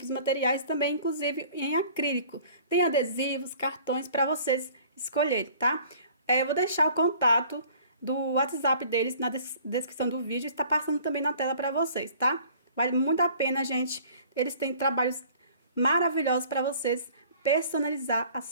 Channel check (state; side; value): inverted; both; correlation -0.51